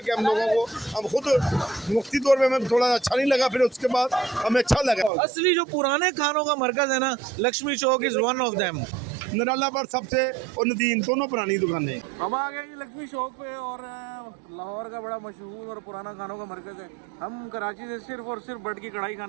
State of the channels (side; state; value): left; drops out; at 5.1 s